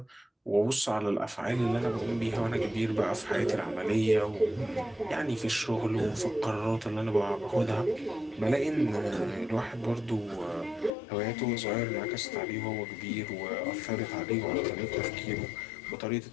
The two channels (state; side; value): drops out; right; at 10.9 s